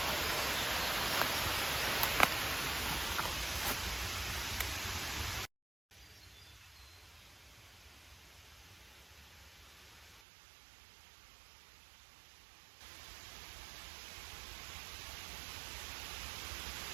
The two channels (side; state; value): left; drops out; at 10.2 s